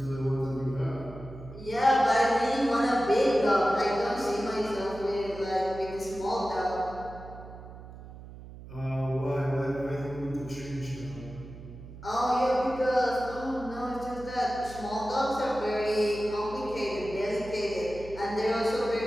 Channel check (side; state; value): right; noise; hum, 15 dB below the sound